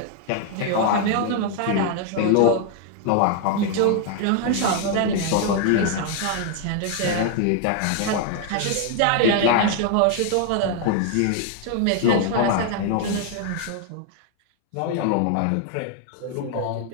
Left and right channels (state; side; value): different; both; correlation 0.00